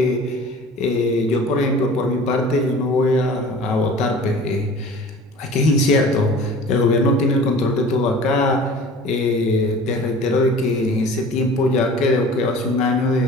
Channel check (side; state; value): both; normal; correlation 0.43